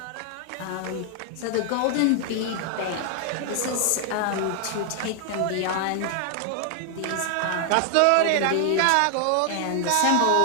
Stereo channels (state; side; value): different; both; correlation 0.00